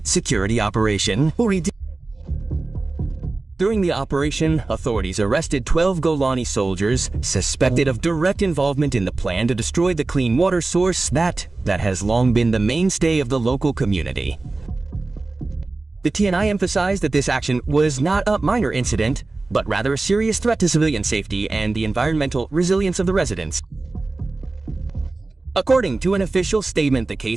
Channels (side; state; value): left; quieter; 3.4 dB